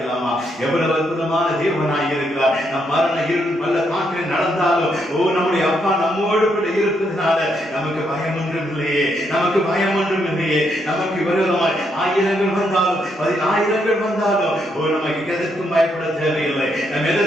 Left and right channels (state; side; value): normal; both; correlation 0.77